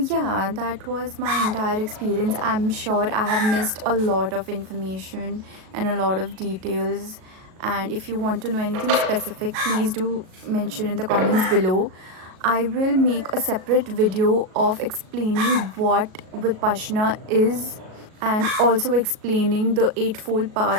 that was my entire experience. I'm sure I have missed a lot of information and a lot of details. And if you want to know anything specific, please do mention in the comments below. I will make a separate video of explaining what Vipassana is and also explaining the eightfold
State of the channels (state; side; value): late; left; 37 ms